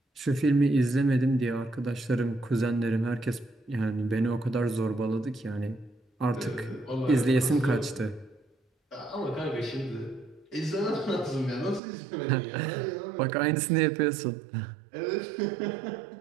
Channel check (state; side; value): drops out; left; at 11.8 s